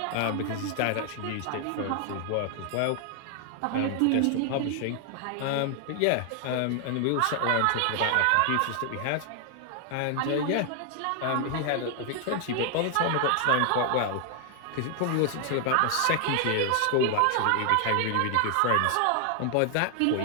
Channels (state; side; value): different; both; correlation 0.00